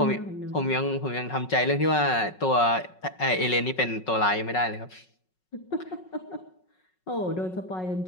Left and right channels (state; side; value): late; right; 5.4 ms